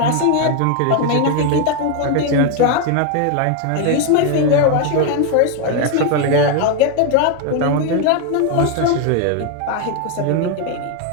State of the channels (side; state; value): both; different; correlation 0.01